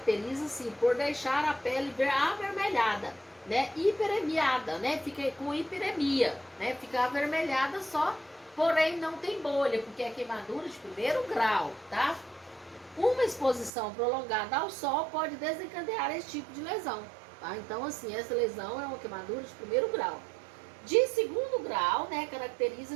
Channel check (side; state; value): left; drops out; at 13.7 s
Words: por deixar a pele avermelhada, né? Hiperemiada, né? Fica com hiperemia, né? Fica avermelhada só, porém não tem bolha, porque é queimadura de primeiro grau, tá? Uma exposição prolongada ao sol pode desencadear esse tipo de lesão, tá? Então, assim, essa lesão é uma queimadura de primeiro grau. De segundo grau, né,